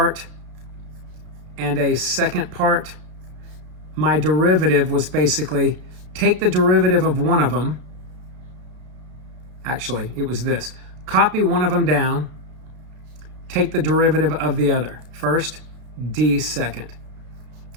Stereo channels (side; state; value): left; late; 33 ms